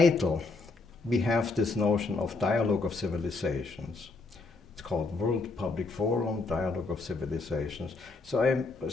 we have this notion of Dialogue of Civilizations. It's called World Public Forum, Dialogue of Civilizations. So I'm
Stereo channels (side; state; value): right; quieter; 3.7 dB